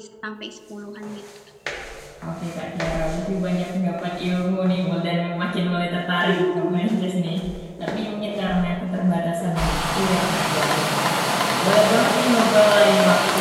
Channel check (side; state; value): both; identical; correlation 1.00